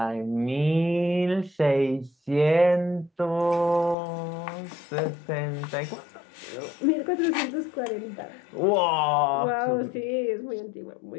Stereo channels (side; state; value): right; drops out; at 4.0 s